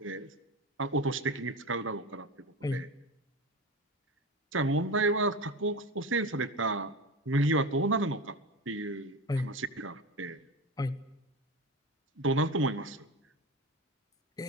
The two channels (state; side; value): normal; both; correlation 0.25